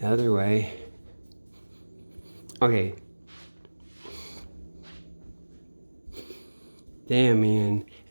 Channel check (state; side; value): inverted; both; correlation -1.00